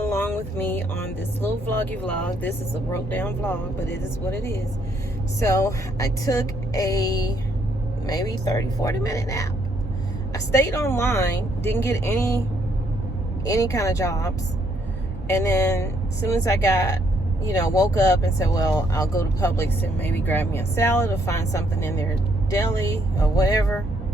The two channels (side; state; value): both; normal; correlation 0.71